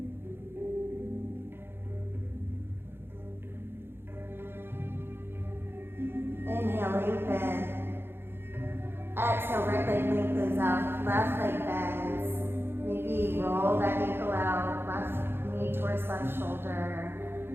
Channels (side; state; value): left; late; 0.11 ms